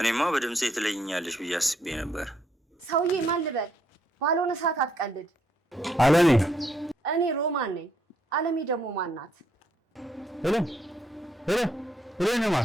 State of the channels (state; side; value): normal; both; correlation 0.73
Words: በድምጼ ትለይኛለሽ ብዬ አስቤ ነበር። ሰውዬ ማን ልበል? ባልሆነ ሰዓት አትቀልድ። አለሜ። እኔ ሮማን ነኝ። አለሜ ደግሞ ማን ናት? ሄሎ